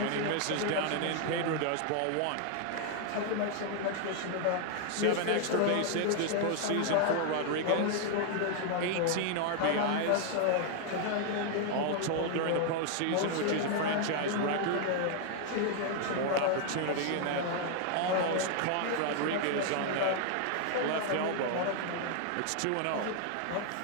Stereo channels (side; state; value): both; different; correlation 0.00